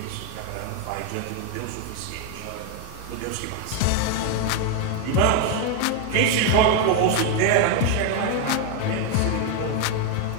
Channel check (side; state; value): both; different; correlation 0.01